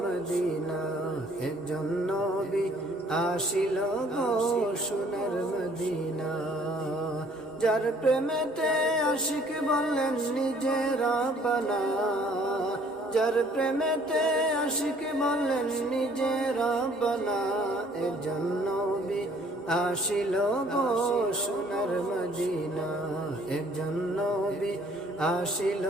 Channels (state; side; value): normal; both; correlation 0.59